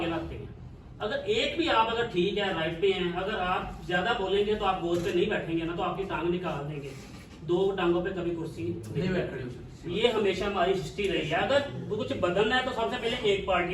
لاتے ہیں۔ اگر ایک بھی آپ اگر ٹھیک ہے رائٹ پہ ہیں، اگر آپ زیادہ بولیں گے تو آپ گود پہ نہیں بیٹھیں گے نا، تو آپ کی ٹانگ نکال دیں گے، 2 ٹانگوں پہ کبھی کرسی نہیں بیٹھ رہی۔ یہ ہمیشہ ہماری ہسٹری رہی ہے۔ اگر کچھ بدلنا ہے تو سب سے پہلے ایک پارٹی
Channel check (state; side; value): identical; both; correlation 1.00